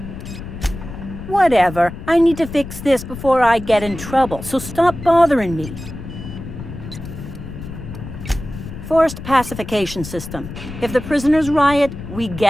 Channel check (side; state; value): left; noise; rumble, 11 dB below the sound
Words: Whatever. I need to fix this before I get in trouble, so stop bothering me. Forced pacification system. If the prisoners riot, we